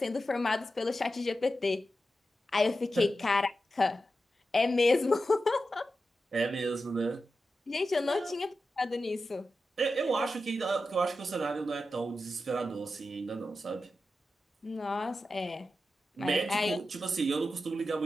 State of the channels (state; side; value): normal; both; correlation 0.91